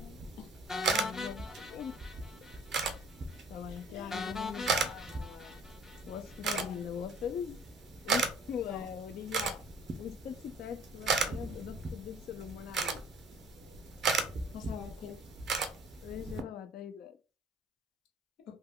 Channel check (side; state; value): both; normal; correlation 0.54